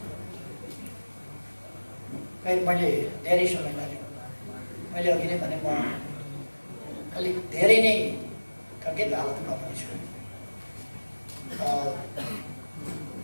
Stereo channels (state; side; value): inverted; both; correlation -1.00